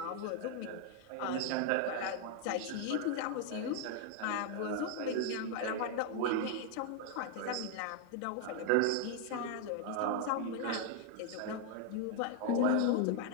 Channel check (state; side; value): different; both; correlation 0.00